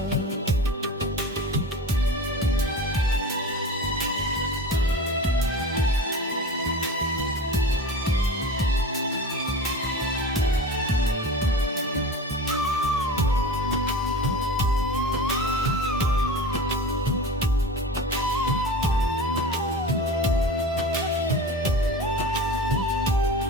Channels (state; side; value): normal; both; correlation 0.33